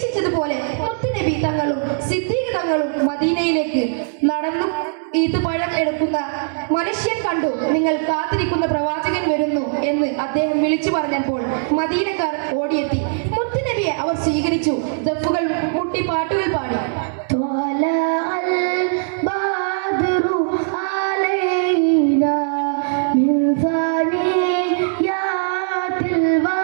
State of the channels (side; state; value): left; silent; 66 dB below the other